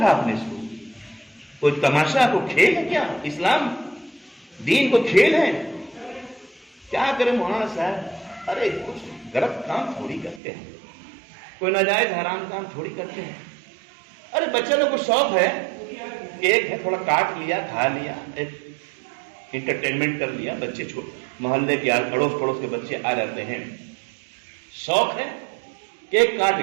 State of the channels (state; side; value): drops out; left; at 10.4 s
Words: آپ نے اس کو؟ کوئی تماشا، کوئی کھیل ہے کیا؟ اسلام دین کو کھیل ہے کیا؟ کرے مولانا صاحب، ارے کچھ غلط کام تھوڑی کرتے ہیں، کوئی ناجائز حرام کام تھوڑی کرتے ہیں۔ ارے بچے لوگ کو شوق ہے، کیک ہے تھوڑا کاٹ لیا، کھا لیا، ایک انٹرٹینمنٹ کر لیا، بچے محلے کے اڑوس پڑوس کے بچے آ جاتے ہیں، شوق ہے، کیک کاٹ